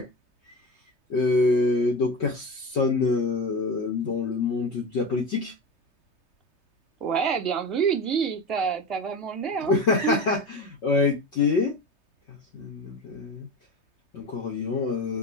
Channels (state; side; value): late; right; 3.3 ms